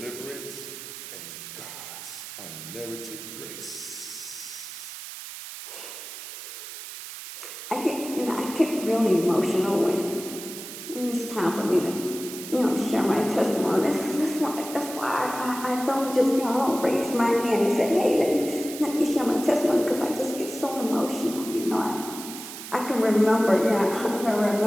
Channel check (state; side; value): noise; right; hiss, 11 dB below the sound